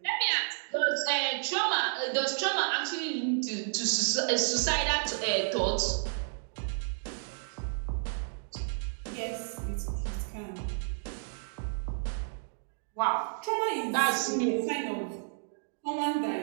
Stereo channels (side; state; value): left; silent; digital silence